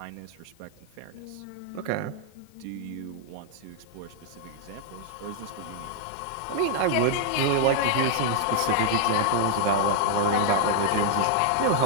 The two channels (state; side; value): different; both; correlation 0.00